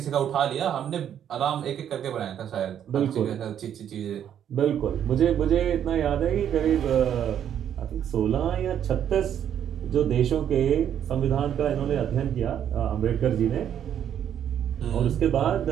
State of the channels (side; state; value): left; quieter; 9.6 dB